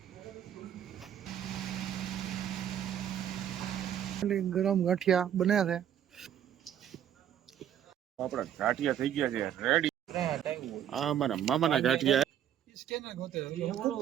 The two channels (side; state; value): left; quieter; 10.1 dB